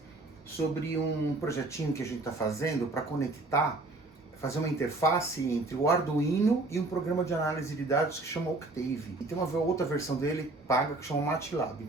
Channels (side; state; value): left; quieter; 3.0 dB